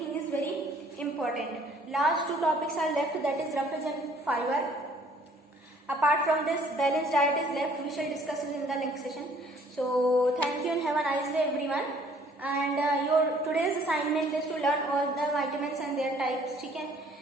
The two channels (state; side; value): normal; both; correlation 0.58